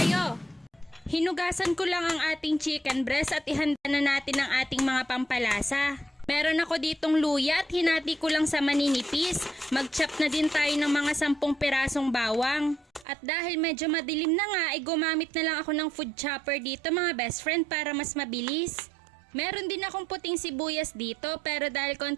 Hinugasan ko lang ang ating chicken breast at ihanda na natin ang ating mga pampalasa. Meron ako ditong luya at hinati ko lang sa maninipis. Mag-chop na din tayo ng mga 10 pirasong bawang. At dahil medyo madilim na nga ay gumamit na lang ako ng food chopper dito mga best friend para mas mabilis. Meron din akong puting sibuyas dito pero dahil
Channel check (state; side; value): drops out; left; at 13.1 s